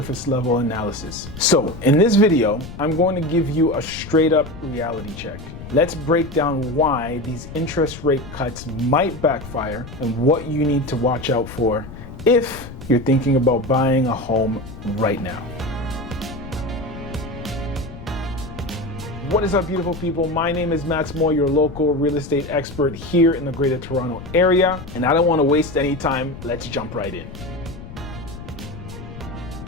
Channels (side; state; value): left; noise; rumble, 13 dB below the sound